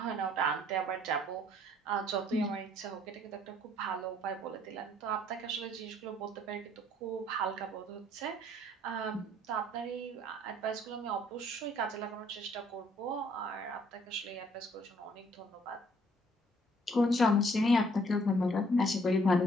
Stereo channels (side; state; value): both; normal; correlation 0.62